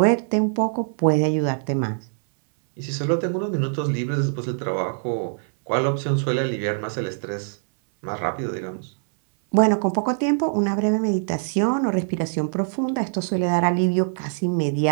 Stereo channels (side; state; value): left; silent; 63 dB below the other